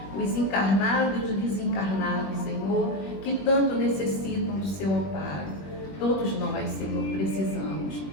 os encarnados e os desencarnados, Senhor, que tanto necessitam do Seu amparo. Todos nós, Senhor, precisamos.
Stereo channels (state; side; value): late; right; 20 ms